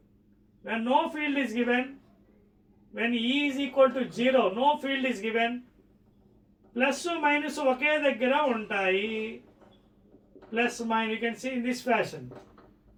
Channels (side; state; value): both; identical; correlation 1.00